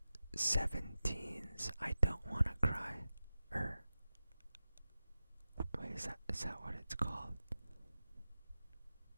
17's I Don't Wanna Cry. Wait, is that what it's called?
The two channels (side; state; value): both; inverted; correlation -0.93